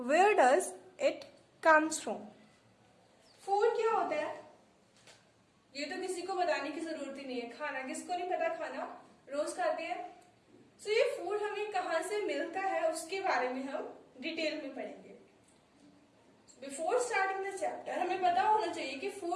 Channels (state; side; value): identical; both; correlation 1.00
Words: does it comes from? Food क्या होता है ये तो किसी को बताने की जरूरत ही नहीं है। खाना किसको नहीं पता, खाना रोज खाते हैं। सो ये फूड हमें कहाँ से मिलता है उसके बारे में हम डिटेल में पढ़ेंगे। बिफोर स्टार्टिंग द चैप्टर हमें पता होना चाहिए कि